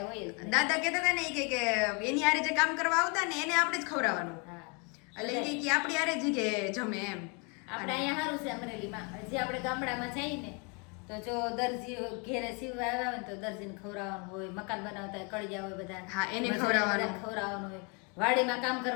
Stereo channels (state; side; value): quieter; right; 33.5 dB